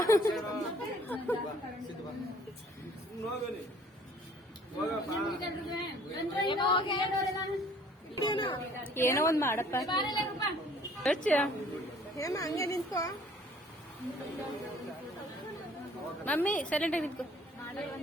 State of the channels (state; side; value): normal; both; correlation 0.56